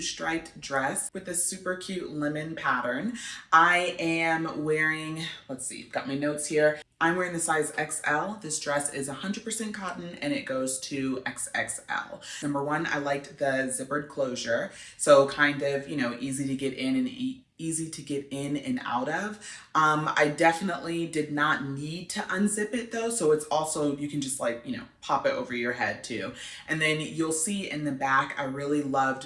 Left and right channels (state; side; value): identical; both; correlation 1.00